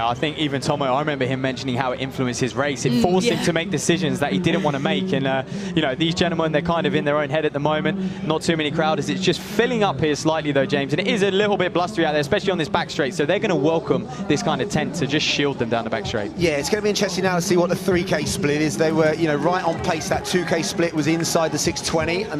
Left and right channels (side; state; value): both; identical; correlation 1.00